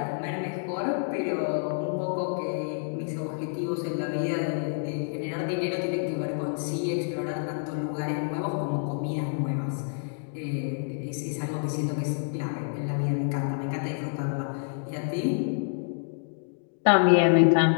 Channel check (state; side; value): silent; right; digital silence